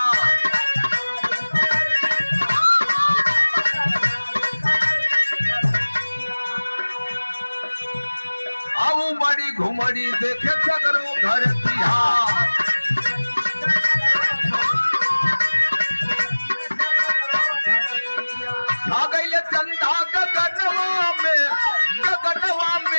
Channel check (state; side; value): inverted; both; correlation -1.00